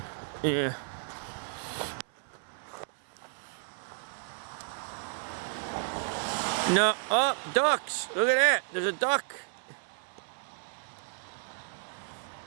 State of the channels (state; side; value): silent; left; 55 dB below the other